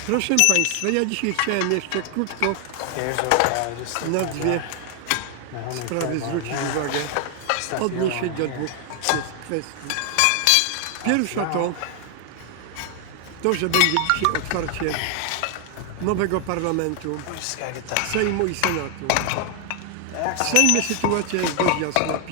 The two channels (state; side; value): different; both; correlation 0.00